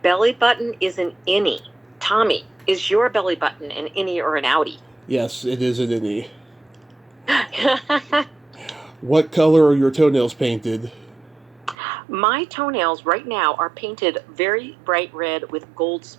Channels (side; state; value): left; drops out; at 11.8 s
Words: button is an innie. Tommy, is your belly button an innie or an outie? Yes, it is an innie. What color are your toenails painted? My toenails right now are painted very bright red with gold